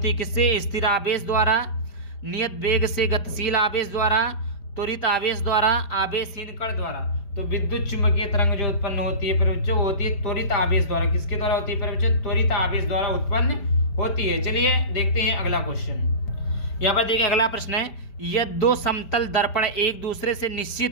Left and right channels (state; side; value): late; right; 5.0 ms